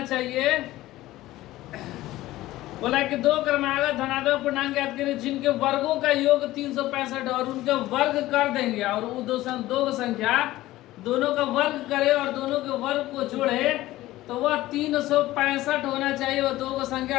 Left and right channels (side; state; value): right; quieter; 16.5 dB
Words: चाहिए। बोला कि दो क्रमागत धनात्मक पूर्णांक ज्ञात करें जिनके वर्गों का योग 365 और उनके वर्ग कर देंगे और वो दो संख्या दोनों का वर्ग करे और दोनों के वर्ग को जोड़े तो वह 365 होना चाहिए। वो दो